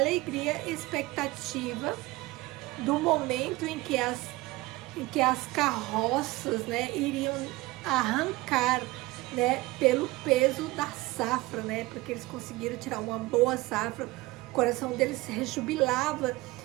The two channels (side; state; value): left; quieter; 20.5 dB